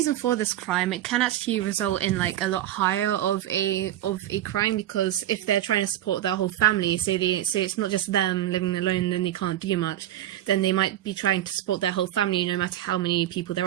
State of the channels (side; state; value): left; quieter; 12.8 dB